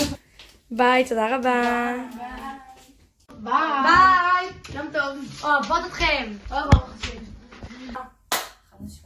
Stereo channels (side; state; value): both; identical; correlation 1.00